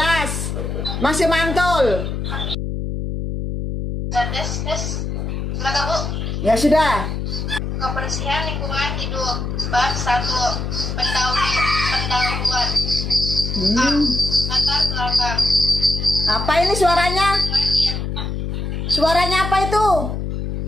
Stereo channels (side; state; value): left; noise; hum, 3 dB below the sound